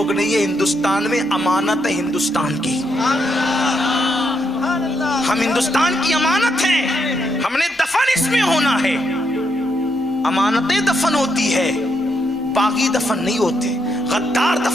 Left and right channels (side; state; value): both; normal; correlation 0.78